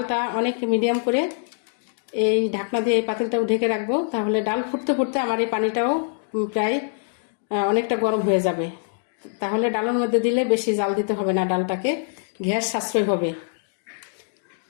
অনেক মিডিয়াম করে এই ঢাকনা দিয়ে এই পাতিলটাও ঢেকে রাখবো। তাহলে ডাল ফুটতে ফুটতে আমার এই পানিটাও প্রায় অনেকটা গরম হয়ে যাবে। তাহলে ডালের মধ্যে দিলে বেশি জাল দিতে হবে না, ডালটাকে গ্যাস সাশ্রয় হবে।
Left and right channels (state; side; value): silent; right; digital silence